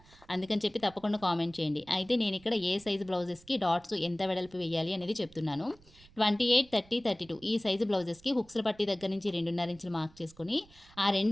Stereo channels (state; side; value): noise; right; rumble, 26 dB below the sound